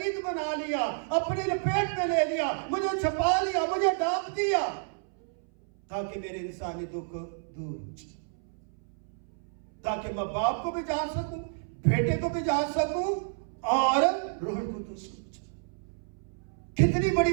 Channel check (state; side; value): silent; left; 58 dB below the other